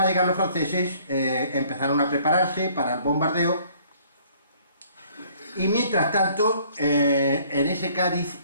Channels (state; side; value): inverted; both; correlation -0.59